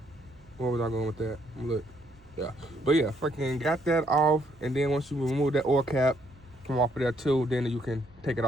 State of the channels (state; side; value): noise; right; hum, 27 dB below the sound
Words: was I going with that? Look, yeah. But yeah, got that off, and then once you remove that oil cap from off of there too, then you can take it